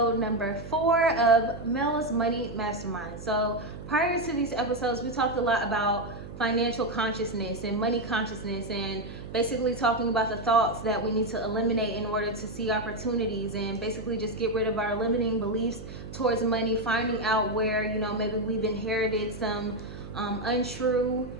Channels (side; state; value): right; noise; hum, 12 dB below the sound